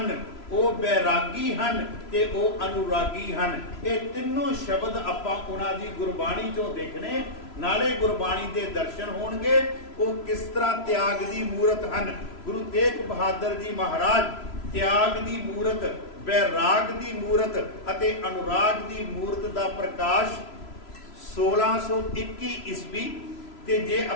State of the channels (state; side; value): late; right; 3.0 ms